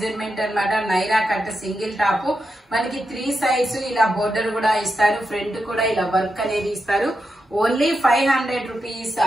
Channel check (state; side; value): normal; both; correlation 0.87